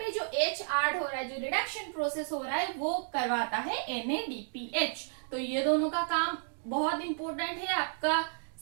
जो H ऐड हो रहा है, जो रिडक्शन प्रोसेस हो रहा है, वो करवाता है NADPH। तो ये दोनों का काम बहुत इंपॉर्टेंट है आपका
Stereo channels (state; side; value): silent; left; digital silence